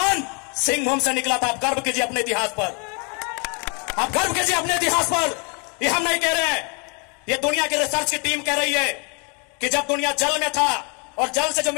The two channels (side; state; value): right; quieter; 34.3 dB